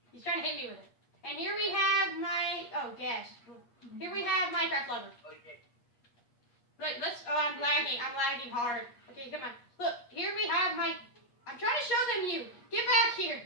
He's trying to hit me with it. And here we have Here we have Minecraft Lover. Okay. Look, I'm lagging hard. Okay, come on. Look, here we have I'm trying to show them you. Get back here.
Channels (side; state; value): right; late; 8.4 ms